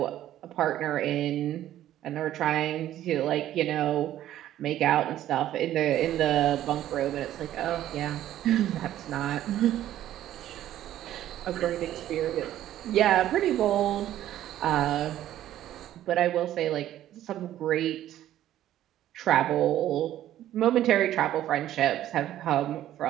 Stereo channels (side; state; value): left; quieter; 12.7 dB